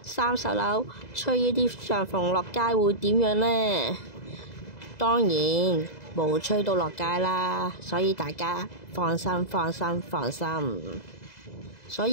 ，30樓吹呢啲帳篷落街會點樣呢？當然冇吹到落街啦，所以大家放心。所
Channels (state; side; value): late; right; 2.0 ms